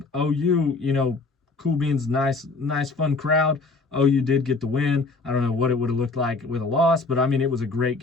OU, cool beans, nice, fun crowd. OU did get the win. I don't know what it would have looked like with a loss, but I mean, it was a great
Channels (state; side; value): quieter; right; 3.7 dB